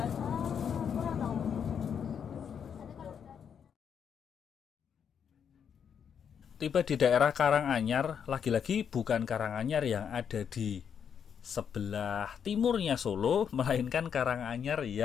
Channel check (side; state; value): right; quieter; 7.6 dB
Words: Kurang tahu. Tiba di daerah Karanganyar, lagi-lagi bukan Karanganyar yang ada di sebelah timurnya Solo, melainkan Karanganyar